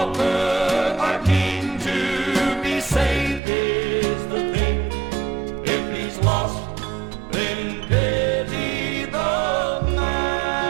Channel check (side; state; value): left; drops out; at 3.4 s